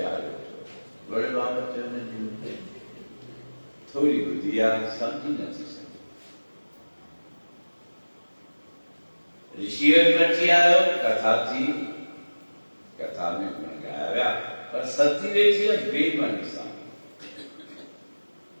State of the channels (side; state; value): both; inverted; correlation -1.00